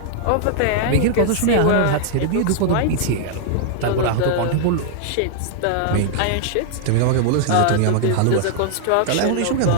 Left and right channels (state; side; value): different; both; correlation -0.01